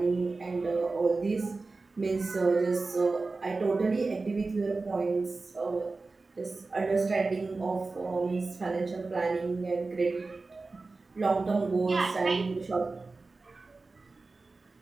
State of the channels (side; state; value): left; quieter; 3.7 dB